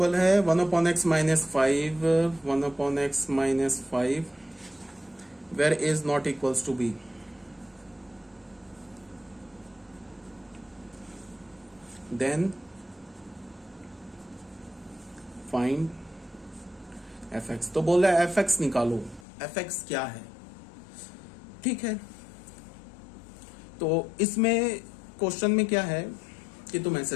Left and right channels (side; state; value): right; drops out; at 19.2 s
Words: है? 1/x -5, 1/x -5 where a is not equals to b। then find fx। तो बोल रहा है fx निकालो। fx क्या है? ठीक है, तो इसमें क्वेश्चन में क्या है कि तुम